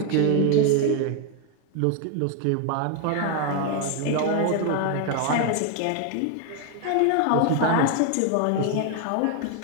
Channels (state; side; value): different; both; correlation 0.01